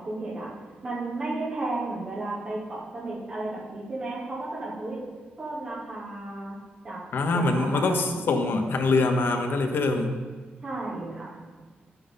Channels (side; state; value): both; normal; correlation 0.75